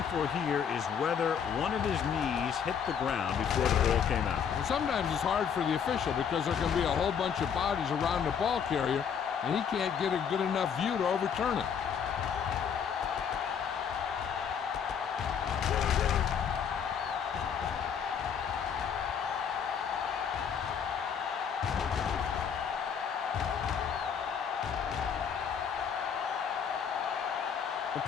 for here is whether one of his knees hit the ground before the ball came out. And sometimes it's hard for the official because there can be a whole bunch of bodies around the ball carrier, and he can't get a good enough view to overturn it.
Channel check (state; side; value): quieter; right; 7.4 dB